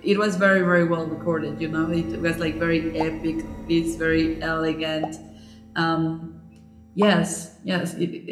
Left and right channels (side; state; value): both; identical; correlation 1.00